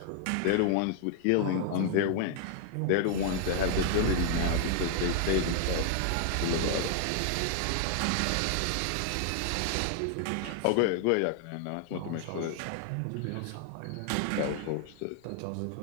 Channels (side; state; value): both; different; correlation 0.00